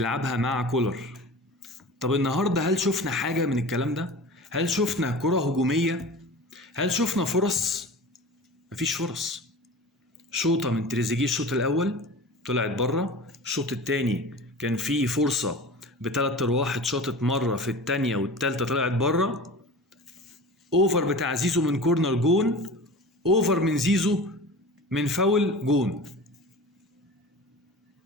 مع كولر. طب النهاردة هل شفنا حاجة من الكلام ده؟ هل شفنا كرة هجومية؟ هل شفنا فرص؟ مفيش فرص. شوطة من تريزيجيه الشوط الأول طلعت بره، الشوط التاني كان فيه فرصة بتلات أرواح اتشاطت مرة، في التانية والتالتة طلعت بره. أوفر بتاع زيزو من كورنر جون، أوفر من زيزو من فاول جون،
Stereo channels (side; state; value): both; normal; correlation 0.35